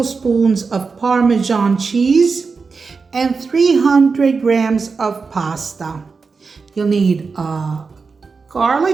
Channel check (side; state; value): left; quieter; 4.7 dB